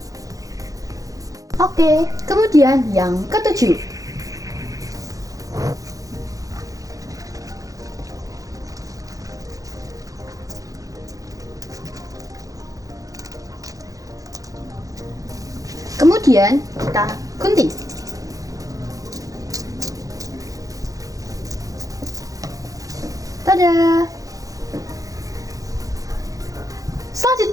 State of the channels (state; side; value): late; left; 0.17 ms